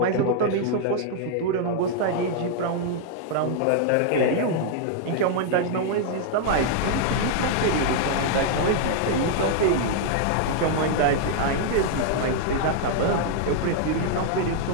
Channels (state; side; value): different; both; correlation -0.01